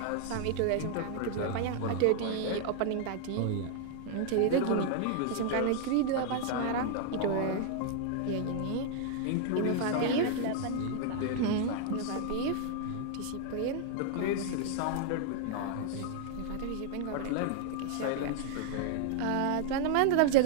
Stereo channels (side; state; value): both; different; correlation 0.00